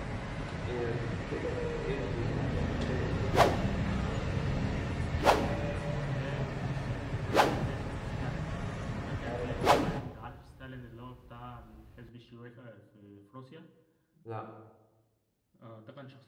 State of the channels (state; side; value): identical; both; correlation 1.00